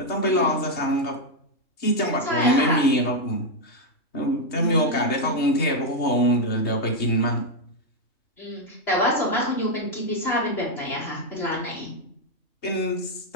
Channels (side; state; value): right; late; 3.2 ms